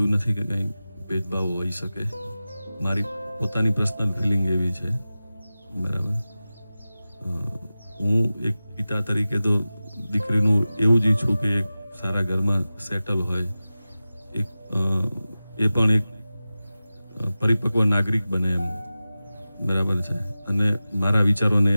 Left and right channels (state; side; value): inverted; both; correlation -0.96